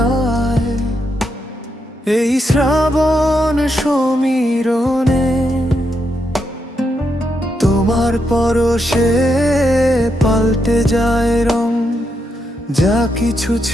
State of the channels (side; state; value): both; normal; correlation 0.81